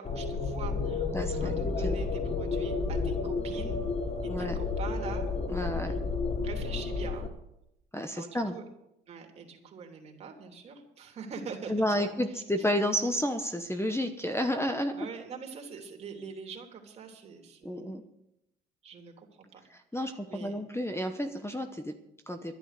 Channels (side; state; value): both; normal; correlation 0.59